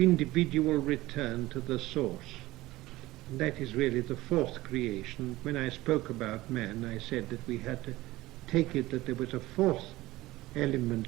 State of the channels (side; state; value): left; quieter; 18.2 dB